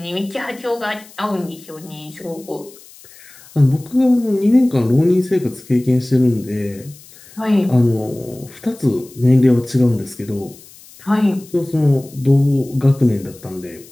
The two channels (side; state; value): left; noise; hiss, 22 dB below the sound